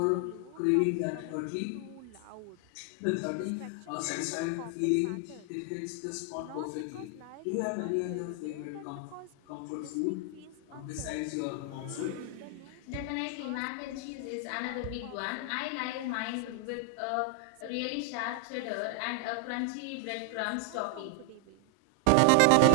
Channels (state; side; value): different; both; correlation 0.00